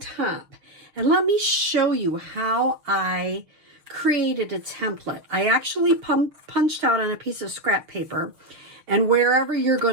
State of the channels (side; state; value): left; late; 6.9 ms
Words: And let me show you how I created a template. I actually punched out on a piece of scrap paper, and wherever you're